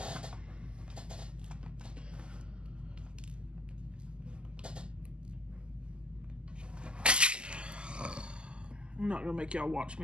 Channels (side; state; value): left; late; 0.049 ms